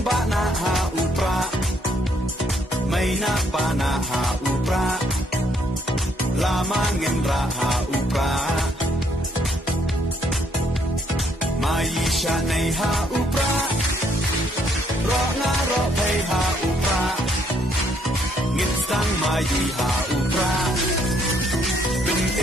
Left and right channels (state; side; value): normal; both; correlation 0.69